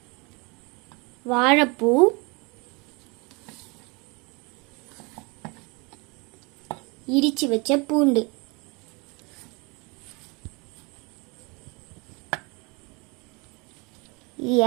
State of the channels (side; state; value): left; quieter; 28.8 dB